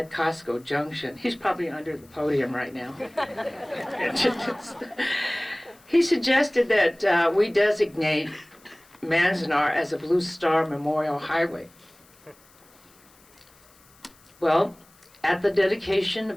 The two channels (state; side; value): noise; left; hiss, 29 dB below the sound